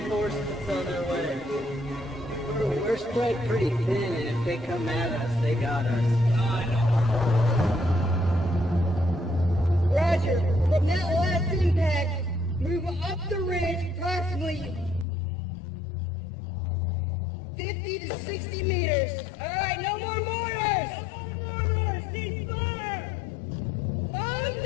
on their way. We're spread pretty thin, and if they come at us, they got us. Roger, from that last impact, move up the ridge approximately 50 to 60 meters. All right, no more mortars! Ceasefire! Arms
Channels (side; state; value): right; drops out; at 15.1 s